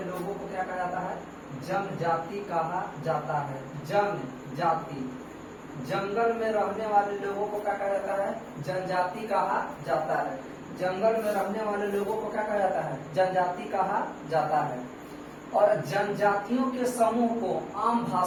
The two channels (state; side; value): identical; both; correlation 1.00